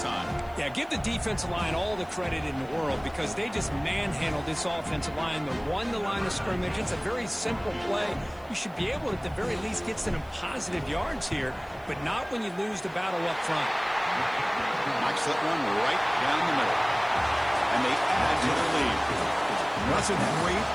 time. Yeah, give the defensive line all the credit in the world because they just manhandled this offensive line. They won the line of scrimmage. It's a very simple play. You should be able to, at the very least, get some positive yards here, but not when you lose the battle up front. Knocks that one right down the middle. And they add to the lead. That's a great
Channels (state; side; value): noise; right; hiss, 29 dB below the sound